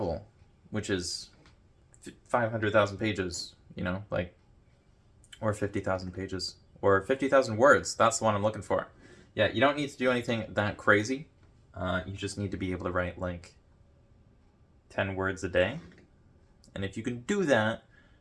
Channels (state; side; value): identical; both; correlation 1.00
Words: which is 500,000 pages, you know, like, or 50,000 pages, or 50,000 words. That's the one I'm looking for. Yeah, you don't need to do anything that crazy. You just need to be able to write like 10 words a day. And if you can do that,